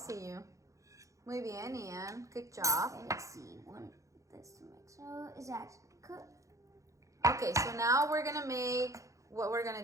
you. Muy bien, Ian. Good job. Okay, let's see. This to mix. So is that cooked? Okay, so now we're gonna make what we're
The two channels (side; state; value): left; late; 0.15 ms